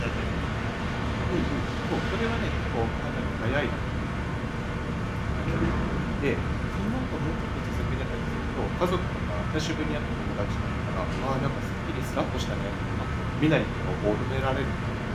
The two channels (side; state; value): both; identical; correlation 1.00